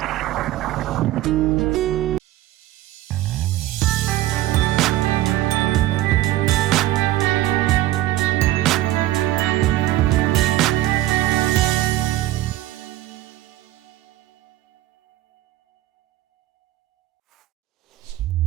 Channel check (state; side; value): quieter; left; 15.2 dB